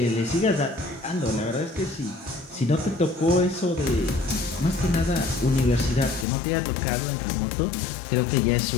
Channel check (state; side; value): drops out; right; at 6.2 s